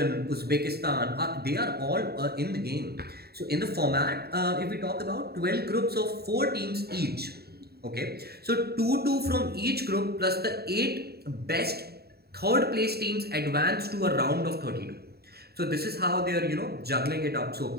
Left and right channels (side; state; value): left; late; 0.46 ms